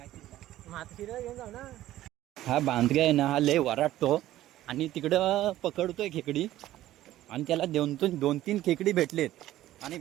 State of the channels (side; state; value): left; quieter; 14.3 dB